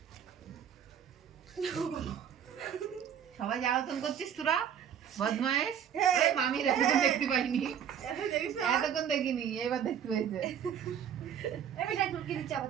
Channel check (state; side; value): quieter; left; 8.8 dB